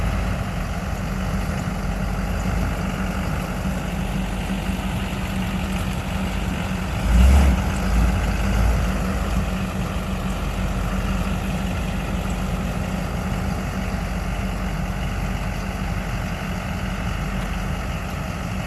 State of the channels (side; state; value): both; identical; correlation 1.00